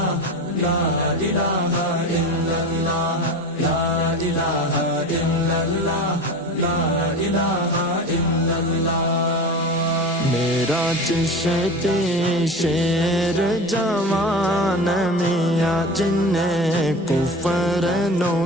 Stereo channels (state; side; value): normal; both; correlation 0.31